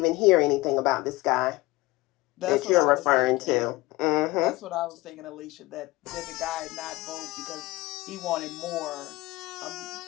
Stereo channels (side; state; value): right; quieter; 20.5 dB